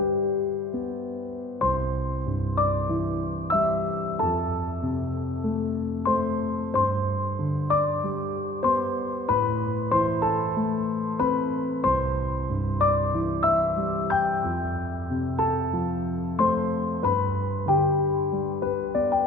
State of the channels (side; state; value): both; normal; correlation 0.57